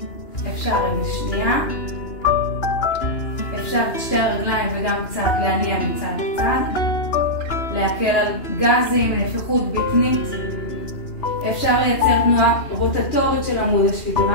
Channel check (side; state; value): right; late; 2.9 ms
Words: אפשר רגל שנייה, אפשר את שתי הרגליים וגם קצת להניע מצד לצד, להקל על גזים, נפיחות בטנית. אפשר לייצר תנועה רוטטורית של עמוד